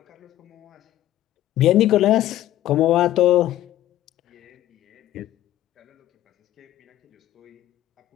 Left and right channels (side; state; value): right; quieter; 13.7 dB